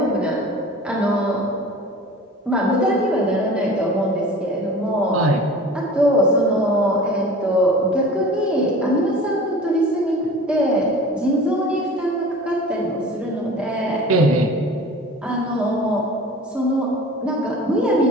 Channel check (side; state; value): both; normal; correlation 0.41